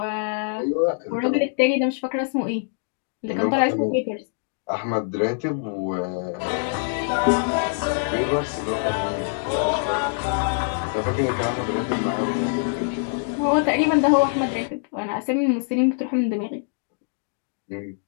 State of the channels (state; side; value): silent; right; digital silence